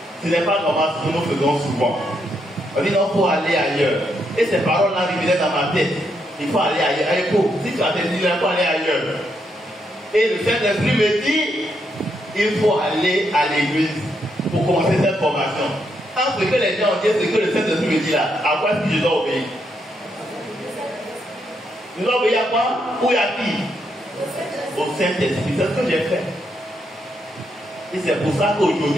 Ce n'est pas normal ce que nous faisons souvent. On dit non, il faut aller ailleurs. Et ces paroles-là revenaient dans ma tête. Il faut aller ailleurs. Si tu as des idées, il faut aller ailleurs. Et le Saint-Esprit me dit, il faut aller à l'église pour commencer cette formation. Entre ce que les gens ont dit, ce que le Saint-Esprit me dit là, à quoi est-ce que je dois obéir? Je dois obéir à quoi? Ou à qui? Au Saint-Esprit. C'est ce que j'ai fait. Et c'est pour ça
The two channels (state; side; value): normal; both; correlation 0.78